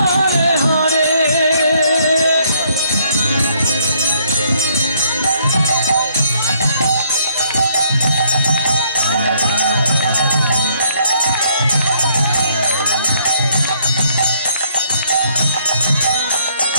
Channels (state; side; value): inverted; both; correlation -0.67